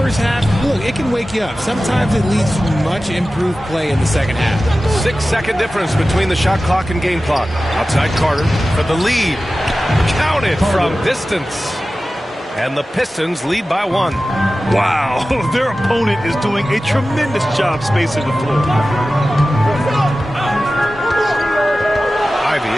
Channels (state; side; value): normal; both; correlation 0.95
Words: half, look, it can wake you up. Sometimes it leads to much improved play in the second half. 6-second difference between the shot clock and game clock. Outside Carter for the lead. Count it from distance. And the Pistons lead by 1. Wow, their opponent is doing a tremendous job spacing the floor. Ivy